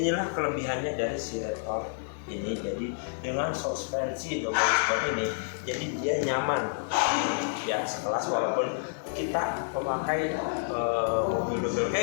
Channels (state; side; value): silent; right; digital silence